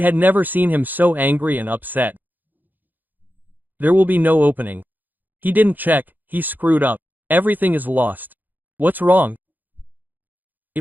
never seen him so angry and upset. "There will be no opening. He didn't check, he screwed up. Everything is lost." "What's wrong?"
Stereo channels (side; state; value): left; late; 0.086 ms